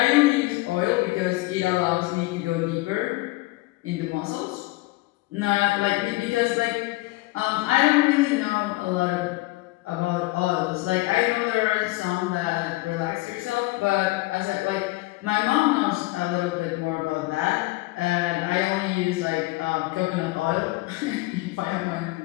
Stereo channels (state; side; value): quieter; right; 21.1 dB